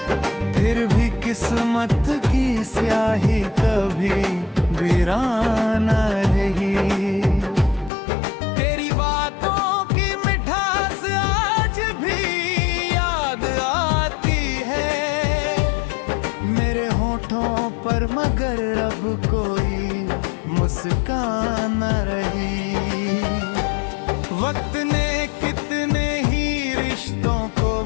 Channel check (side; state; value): right; drops out; at 7.9 s